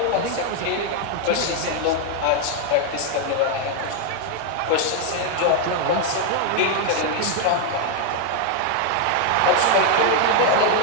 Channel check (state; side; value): different; both; correlation 0.00